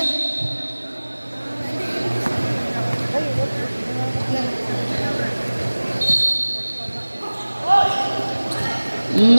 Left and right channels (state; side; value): inverted; both; correlation -1.00